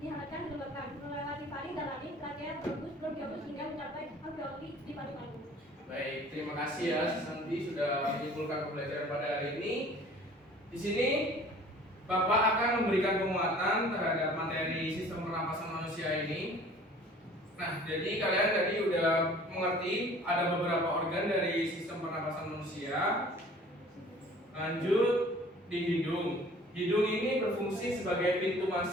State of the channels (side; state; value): both; normal; correlation 0.49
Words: dihangatkan, dilembabkan, melewati faring dan laring, trabea, bronkus, bronkiolus hingga mencapai alveoli di paru-paru. Baik, terima kasih ya Santi sudah menyimpulkan pembelajaran pada hari ini. Di sini Bapak akan memberikan penguatan terhadap materi sistem pernapasan manusia ini. Nah, jadi kalian tadi udah mengerti ada beberapa organ dari sistem pernapasan manusia. Lanjut di hidung. Hidung ini berfungsi sebagai pintu